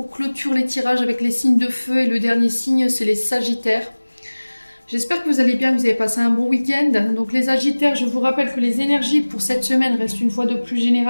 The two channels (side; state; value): both; inverted; correlation -1.00